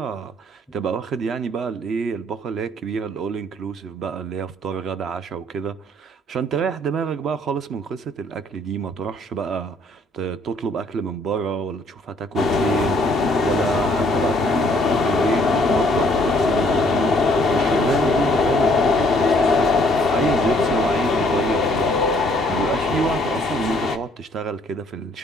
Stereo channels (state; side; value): normal; both; correlation 0.63